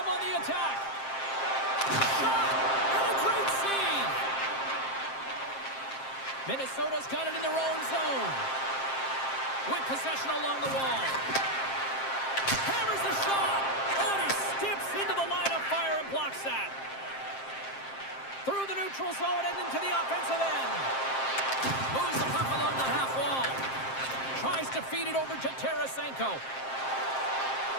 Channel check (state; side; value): late; right; 7.6 ms